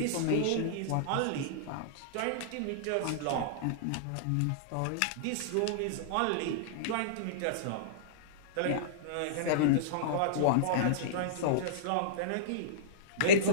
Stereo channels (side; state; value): both; different; correlation -0.03